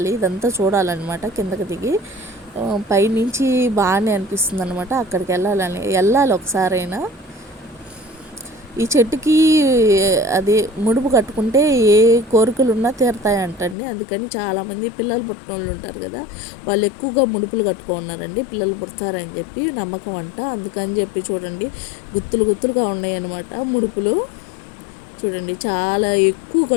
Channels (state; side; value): drops out; right; at 13.8 s